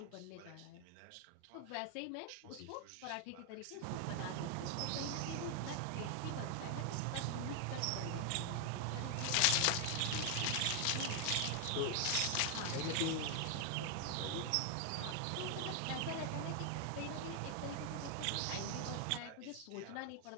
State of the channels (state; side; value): different; both; correlation 0.00